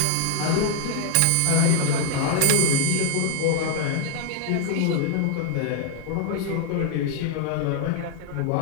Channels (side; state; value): both; different; correlation 0.00